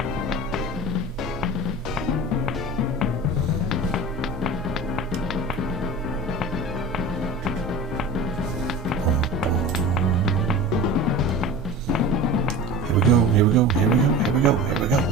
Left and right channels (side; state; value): both; normal; correlation 0.34